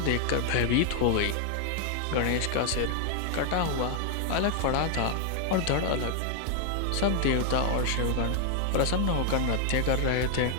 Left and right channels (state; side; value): different; both; correlation 0.00